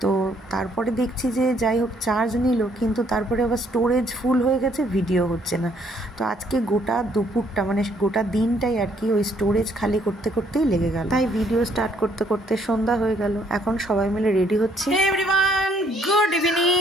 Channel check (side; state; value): both; normal; correlation 0.66